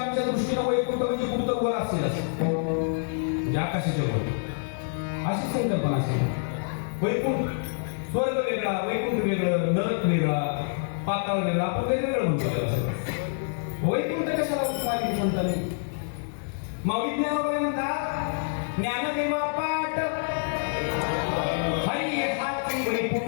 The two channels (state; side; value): silent; right; digital silence